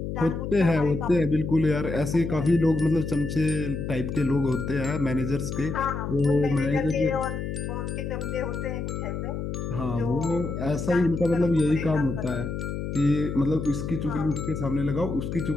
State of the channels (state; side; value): noise; left; hum, 4 dB below the sound